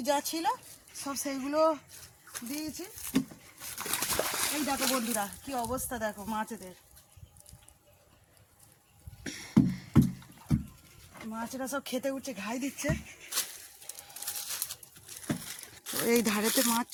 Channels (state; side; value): identical; both; correlation 1.00